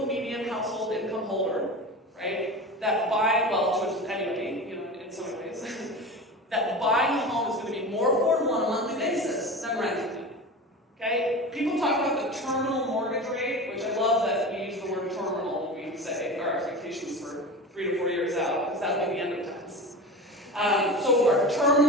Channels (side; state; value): both; normal; correlation 0.29